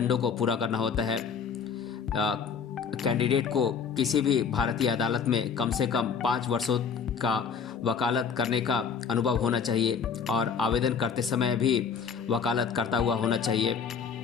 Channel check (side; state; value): right; quieter; 6.4 dB